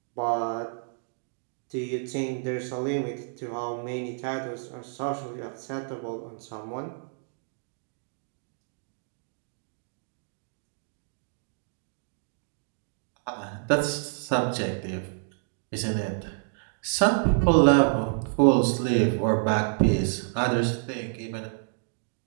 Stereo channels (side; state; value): left; silent; digital silence